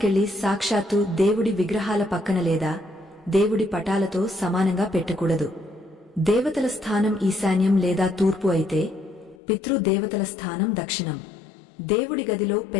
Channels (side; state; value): right; drops out; at 9.4 s